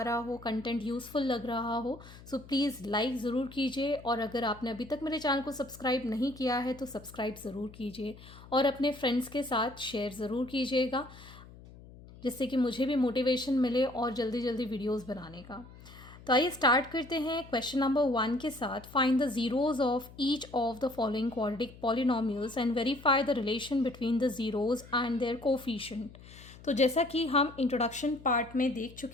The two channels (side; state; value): left; noise; hum, 19 dB below the sound